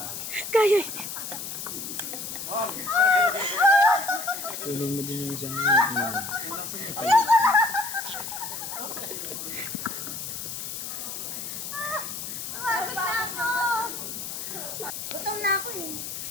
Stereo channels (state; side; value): noise; left; hiss, 6 dB below the sound